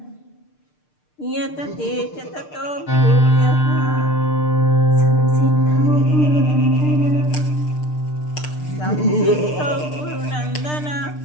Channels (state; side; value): late; right; 6.7 ms